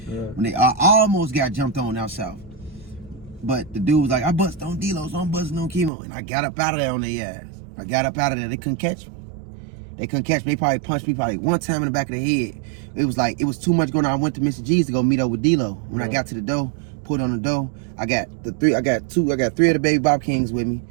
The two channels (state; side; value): drops out; left; at 5.9 s